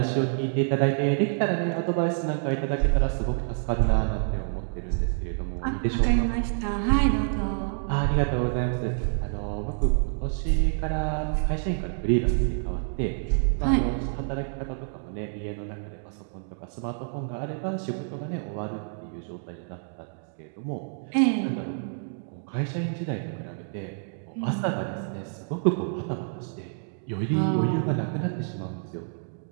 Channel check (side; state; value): left; silent; digital silence